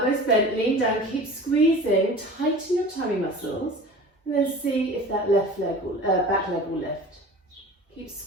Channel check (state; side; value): normal; both; correlation 0.39